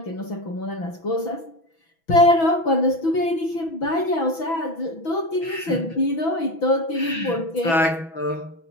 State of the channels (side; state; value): right; late; 6.1 ms